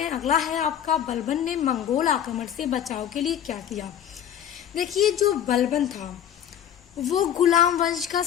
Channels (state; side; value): quieter; right; 9.7 dB